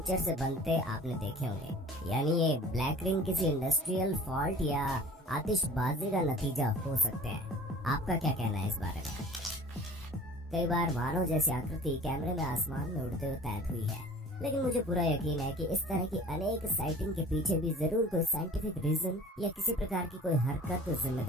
से बनते आपने देखे होंगे। यानी ये ब्लैक रिंग किसी इंडस्ट्रियल फॉल्ट या आतिशबाजी का नतीजा हो सकते हैं। आपका क्या कहना है इस बारे में? कई बार मानव जैसी आकृति कैमरे में आसमान में उड़ते हुए कैद हुई है, लेकिन मुझे पूरा यकीन है कि इस तरह की अनेक साइटिंग के पीछे भी जरूर कोई साइंटिफिक रीजन या किसी प्रकार की कोई हरकत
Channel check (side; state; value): both; normal; correlation 0.45